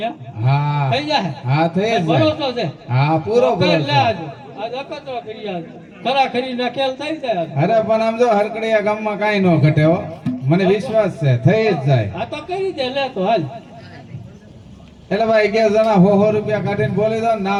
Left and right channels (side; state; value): both; identical; correlation 1.00